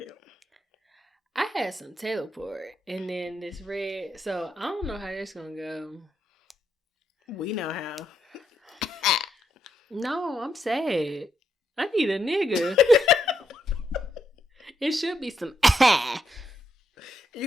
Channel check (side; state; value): both; normal; correlation 0.79